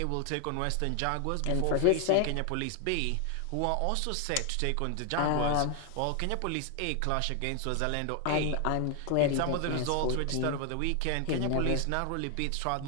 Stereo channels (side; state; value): both; different; correlation 0.01